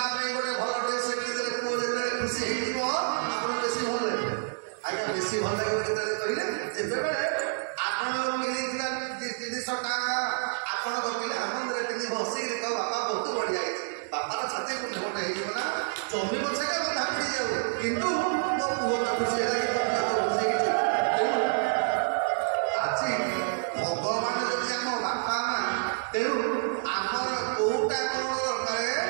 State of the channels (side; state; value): left; silent; 59 dB below the other